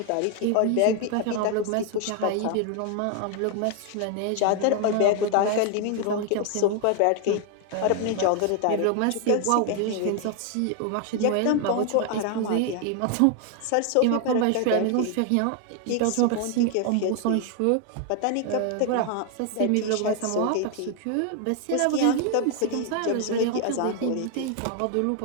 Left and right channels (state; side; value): different; both; correlation 0.00